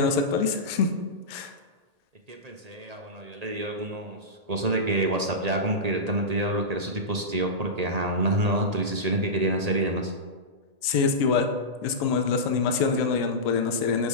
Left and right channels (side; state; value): left; late; 1.8 ms